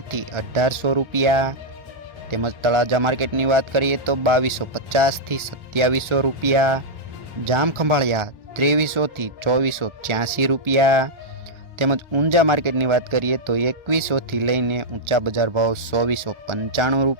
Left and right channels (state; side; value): late; left; 1.4 ms